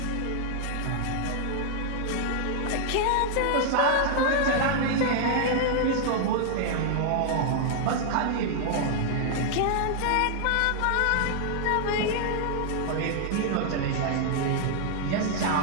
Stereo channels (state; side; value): different; both; correlation -0.01